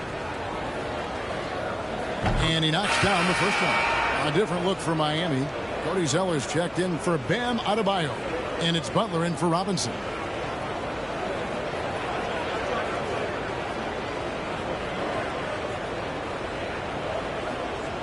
And he knocks down the first one. A different look for Miami. Cody Zeller's checked in for Bam Adebayo. And it's Butler in for Robinson.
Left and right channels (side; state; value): both; identical; correlation 1.00